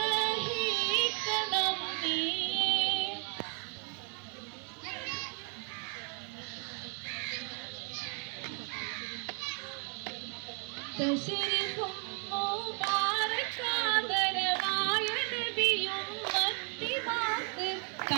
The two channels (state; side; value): quieter; left; 38.8 dB